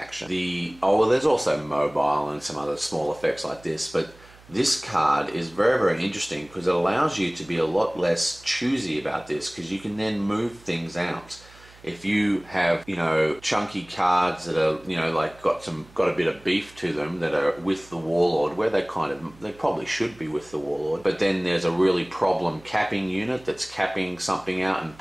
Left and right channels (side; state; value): right; noise; hum, 24 dB below the sound